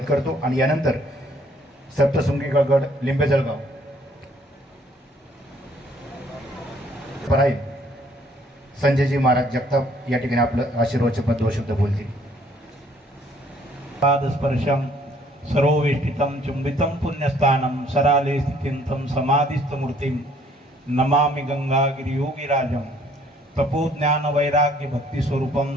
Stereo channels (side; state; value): both; normal; correlation 0.62